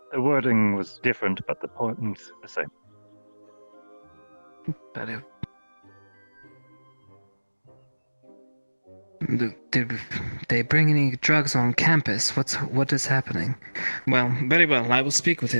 The wording was different, but the point the same. But did they bring any drugs on campus? What is happening? Well, very well. I will speak with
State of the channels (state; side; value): inverted; both; correlation -1.00